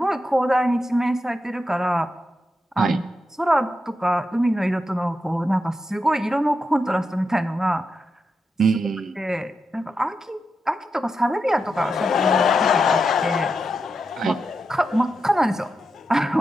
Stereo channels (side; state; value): both; normal; correlation 0.87